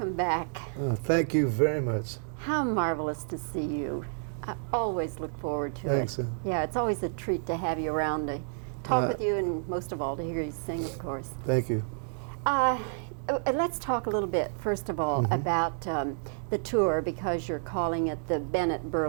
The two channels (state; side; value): silent; left; digital silence